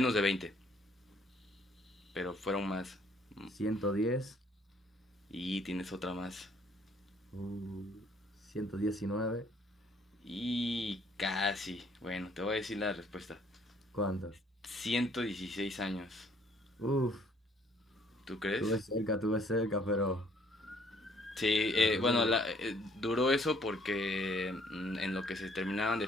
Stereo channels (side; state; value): both; normal; correlation 0.63